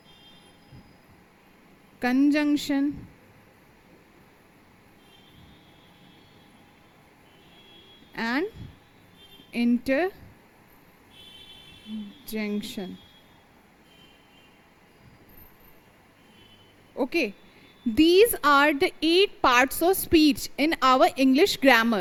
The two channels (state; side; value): identical; both; correlation 1.00